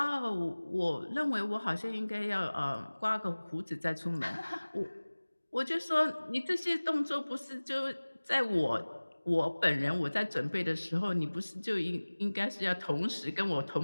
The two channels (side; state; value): both; inverted; correlation -1.00